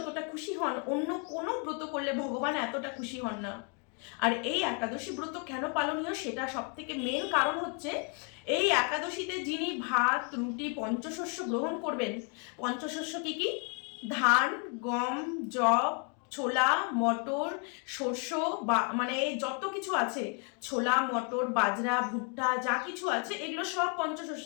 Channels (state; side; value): quieter; right; 38.8 dB